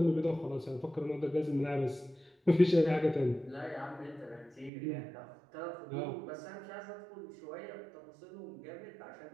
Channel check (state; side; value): drops out; left; at 4.7 s